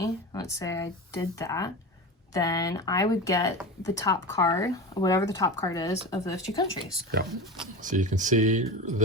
let's say I did that, then I would get the top card, whatever the top card is, of those two countries. Yeah. So you can see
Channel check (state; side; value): normal; both; correlation 0.27